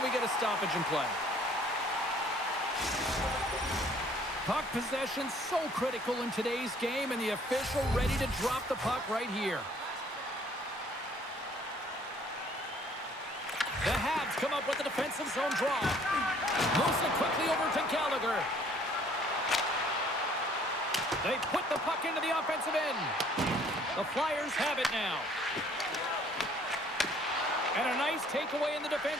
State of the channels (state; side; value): normal; both; correlation 0.58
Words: get a stoppage in play. Puck possession so critical in today's game, and the official ready to drop the puck right here. The Habs come up with a defensive zone draw. Moves it quickly over to Gallagher. They put the puck into the offensive end. The Flyers have it now. And a nice takeaway in the